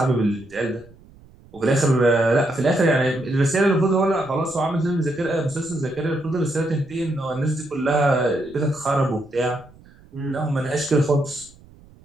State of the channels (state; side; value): noise; right; rumble, 25 dB below the sound